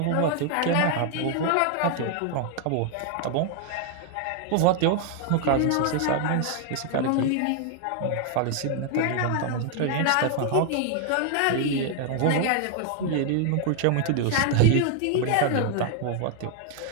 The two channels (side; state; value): both; different; correlation 0.00